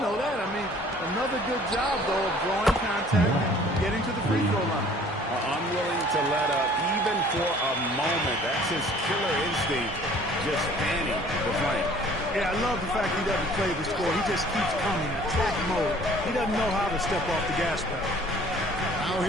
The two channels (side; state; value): both; normal; correlation 0.53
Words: know that. I mean, another good job, though, of drawing contact and getting to the free throw line. Unwilling to let up, even for a moment. That's his killer instinct, just fanning the flame. Yeah, I love the fact he doesn't play the score. He just keeps coming, attack mode. He doesn't know how to step off the gas pedal. Now